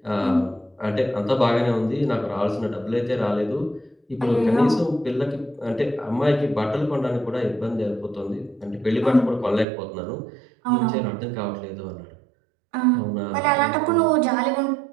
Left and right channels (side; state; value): left; drops out; at 9.7 s